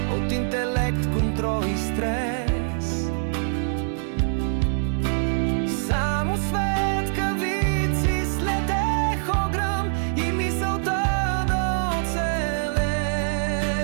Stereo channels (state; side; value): silent; left; digital silence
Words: от интелект, контрол и стрес. Само светкавици следех огръм и мисълта да оцелеш